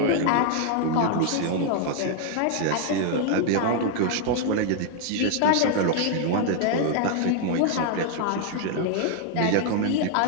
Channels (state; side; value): different; both; correlation 0.00